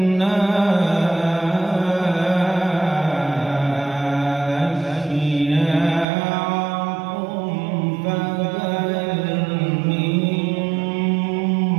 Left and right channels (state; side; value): drops out; left; at 6.1 s